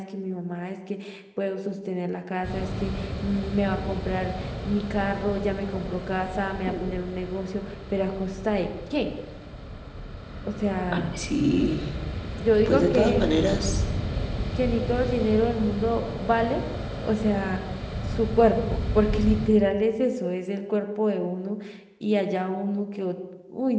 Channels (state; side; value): identical; both; correlation 1.00